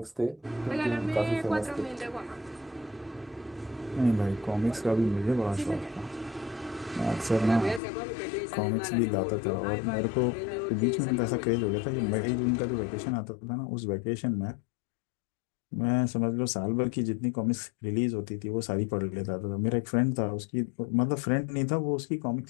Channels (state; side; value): drops out; right; at 7.8 s